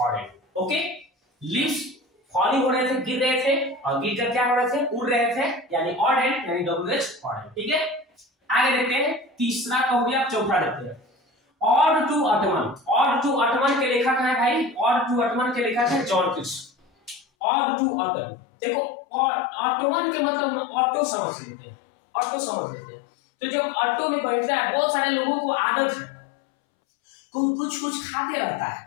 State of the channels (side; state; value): right; drops out; at 17.2 s